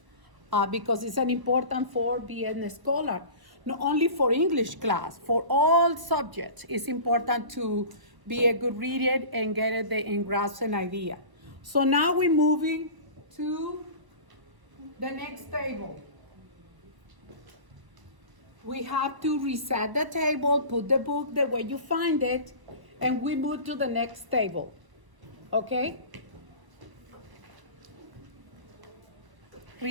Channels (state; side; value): late; left; 1.0 ms